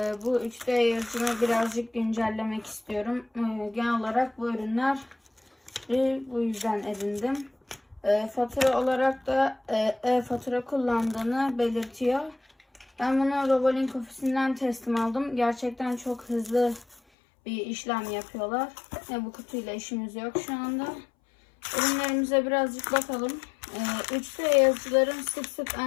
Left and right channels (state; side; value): drops out; right; at 17.0 s